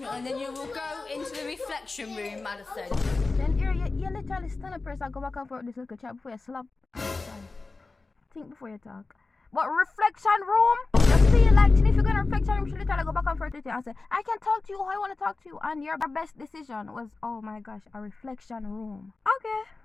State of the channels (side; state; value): right; quieter; 3.7 dB